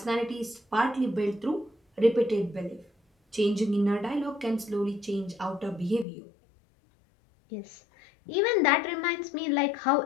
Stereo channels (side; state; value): right; drops out; at 6.1 s